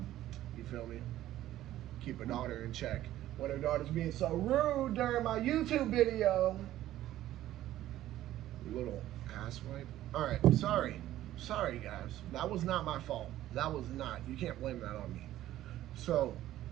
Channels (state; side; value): quieter; left; 13.8 dB